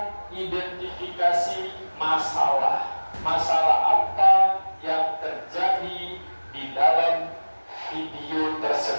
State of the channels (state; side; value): inverted; both; correlation -1.00